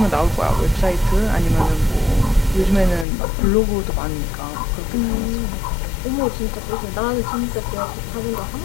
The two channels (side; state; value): right; drops out; at 3.1 s